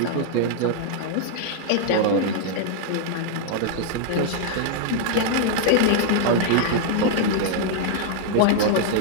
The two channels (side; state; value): both; different; correlation -0.01